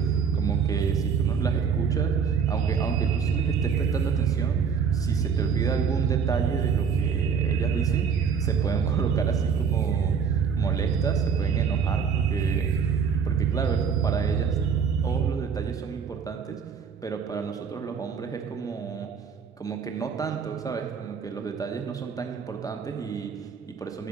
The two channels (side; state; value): left; quieter; 6.5 dB